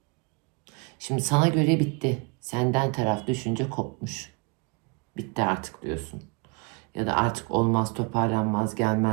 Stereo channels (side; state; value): left; quieter; 32.3 dB